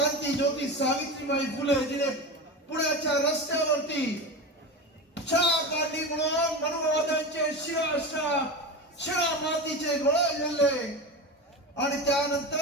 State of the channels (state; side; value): normal; both; correlation 0.24